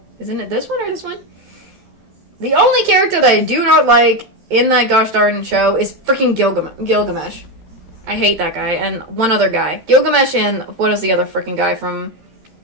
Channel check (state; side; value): late; left; 13 ms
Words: isn't it this one or this one? The only character that I do not like in that gosh darn show is freaking Gilgamesh. I hate that guy. And one other guy. Gilgamesh and... What is the other freaking guy from...